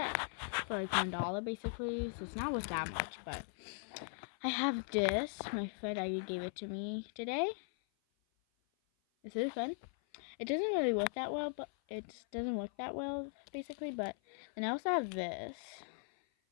it for like $1 basically, so it's not worth that much. But I have this. My friend Ivy gave it to me today. This is fun. It doesn't really work that well, but it doesn't work that well basically. But then I also have this.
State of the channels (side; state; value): right; silent; 52 dB below the other